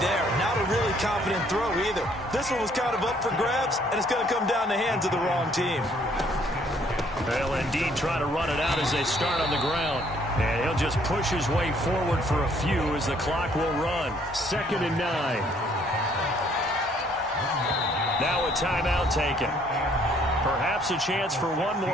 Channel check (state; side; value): normal; both; correlation 0.64